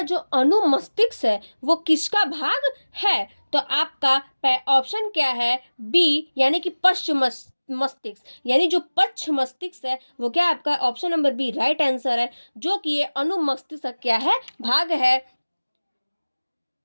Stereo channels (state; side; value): inverted; both; correlation -1.00